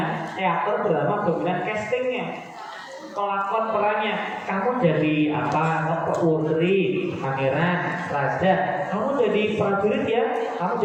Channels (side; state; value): both; identical; correlation 1.00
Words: teater, drama dominan castingnya. Pelakon perannya, kamu jadi apa? Putri, pangeran, raja. Kamu jadi prajurit ya. Kamu